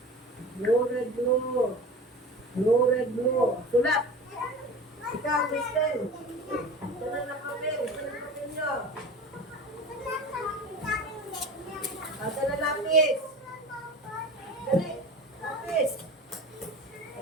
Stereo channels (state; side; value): normal; both; correlation 0.34